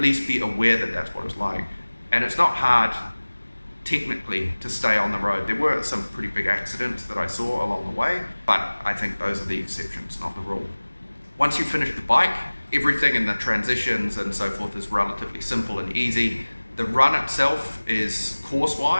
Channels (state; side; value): inverted; both; correlation -1.00